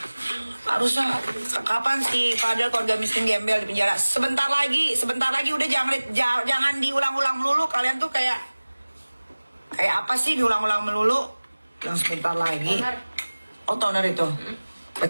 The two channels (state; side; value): inverted; both; correlation -1.00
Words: Harusnya kapan sih padahal keluarga miskin gembel di penjara? Sebentar lagi udah jangan diulang-ulang melulu. Kalian tuh kayak apa sih diulang-ulang melulu? Yang sebentar lagi. Oh, toner itu.